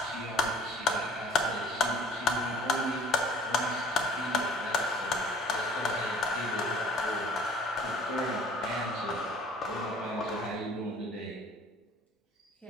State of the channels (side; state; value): both; normal; correlation 0.51